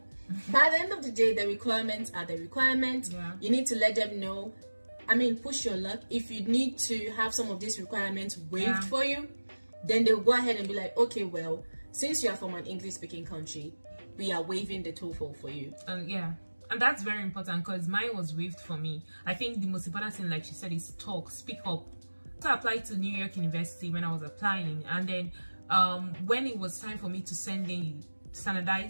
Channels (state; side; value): inverted; both; correlation -1.00